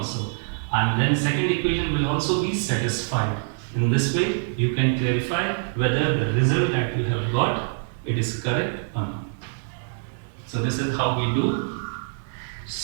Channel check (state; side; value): silent; left; 61 dB below the other